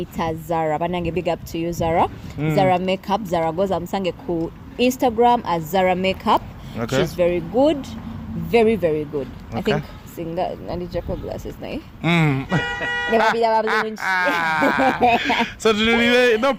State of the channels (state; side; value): identical; both; correlation 1.00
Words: Zara, banange big up to you Zara. Zara makeup, Zara goza musange ku Instagram as Zara makeup. Okay. She's very good, very very good. Okay. I think singa nandi Jaco glasses nae. Never be that. So no